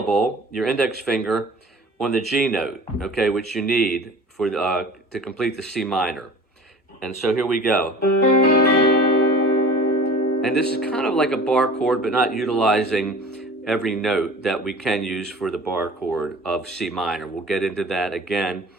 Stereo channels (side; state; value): both; normal; correlation 0.41